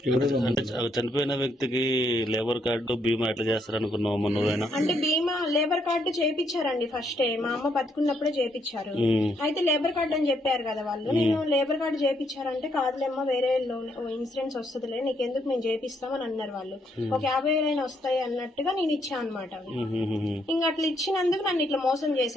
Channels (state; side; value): normal; both; correlation 0.73